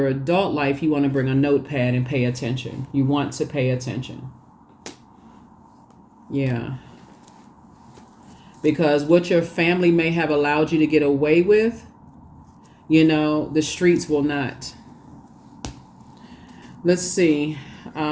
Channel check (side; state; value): both; identical; correlation 1.00